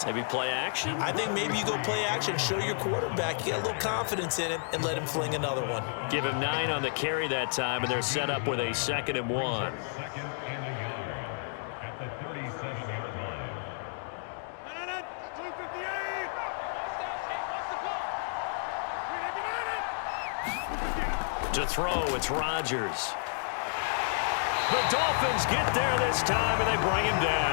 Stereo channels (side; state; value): right; silent; digital silence